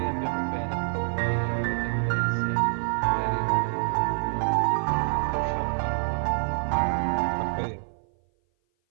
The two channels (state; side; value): silent; left; 57 dB below the other